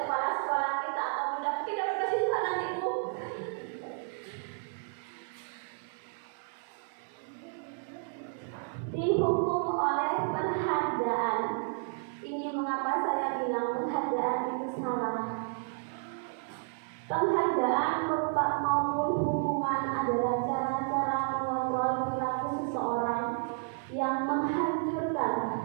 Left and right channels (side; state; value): left; silent; 57 dB below the other